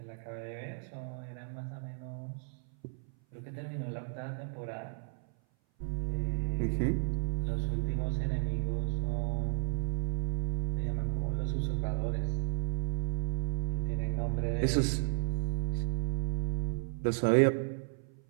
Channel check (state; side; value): silent; left; 55 dB below the other